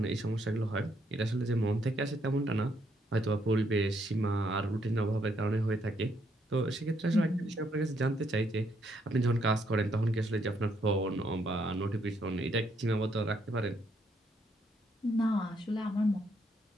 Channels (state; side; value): normal; both; correlation 0.73